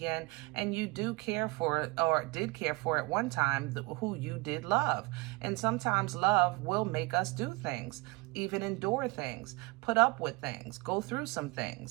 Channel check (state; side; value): quieter; left; 24.8 dB